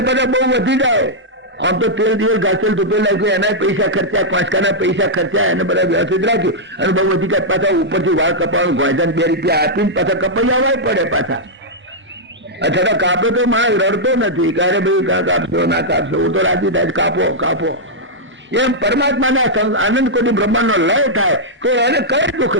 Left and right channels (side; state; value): both; normal; correlation -0.06